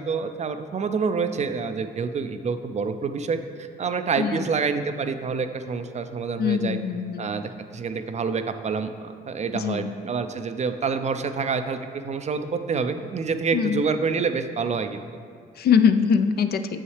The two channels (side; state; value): both; normal; correlation 0.44